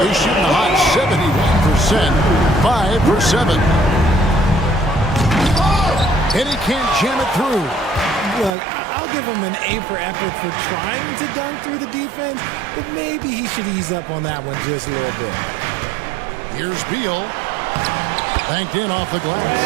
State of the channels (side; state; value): left; drops out; at 8.5 s